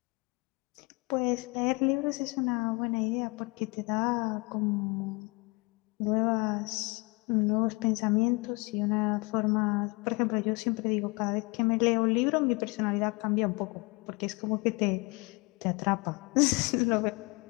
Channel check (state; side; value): quieter; right; 27.7 dB